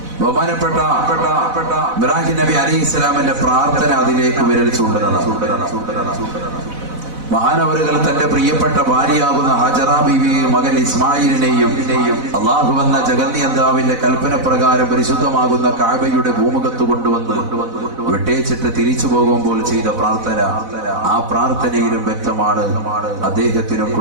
ബഹുമാനപ്പെട്ട ഇബ്രാഹിം നബി അലൈഹിസ്സലാമിന്റെ പ്രാർത്ഥന അതിലേക്ക് വിരൽ ചൂണ്ടുന്നതാണ്. മഹാനവറുകൾ തന്റെ പ്രിയപ്പെട്ട ഭാര്യയാകുന്ന ഹജറ ബീവിയെയും മകൻ ഇസ്മായിലിനെയും അള്ളാഹു എന്ന ജഗന്നിയന്താവിന്റെ കൽപ്പന പ്രകാരം പരിശുദ്ധമാകുന്ന കഅബയുടെ ഭൂമുഖത്ത് കൊണ്ടുവന്ന് വിട്ടേച്ചിട്ട് തിരിച്ചു പോകുമ്പോൾ ചെയ്ത പ്രാർത്ഥന, ആ പ്രാർത്ഥനയിലും വ്യക്തമാണ് അദ്ദേഹത്തിനും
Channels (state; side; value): late; left; 4.0 ms